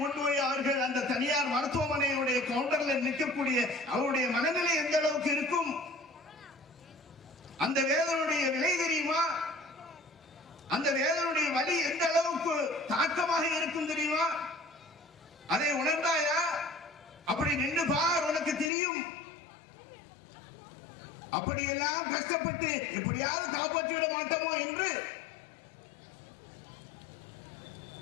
கொண்டு போய் அவர்கள் அந்த தனியார் மருத்துவமனையுடைய கவுண்டர்ல நிற்கக்கூடிய அவருடைய மனநிலை எந்த அளவுக்கு இருக்கும்? அந்த வேதனுடைய விலை தெரியுமா? அந்த வேதனுடைய வலி எந்த அளவுக்கு தாக்கமாக இருக்கும் தெரியுமா? அதை உணர்ந்தாயா? அப்படி நின்று பார், உனக்கு தெரியும். அப்படியெல்லாம் கஷ்டப்பட்டு எப்படியாவது காப்பாற்றிவிட மாட்டோமோ என்று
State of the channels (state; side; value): drops out; right; at 18.7 s